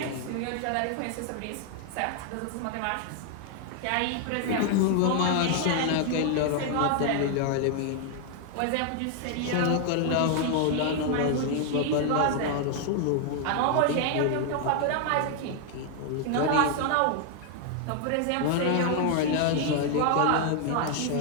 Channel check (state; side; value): different; both; correlation 0.00